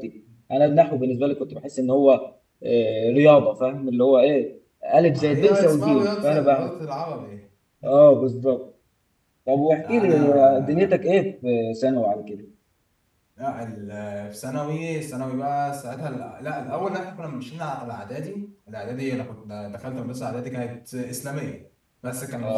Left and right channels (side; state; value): both; identical; correlation 1.00